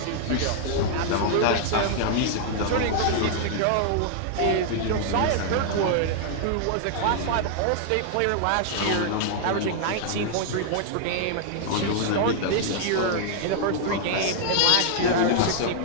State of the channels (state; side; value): different; both; correlation 0.00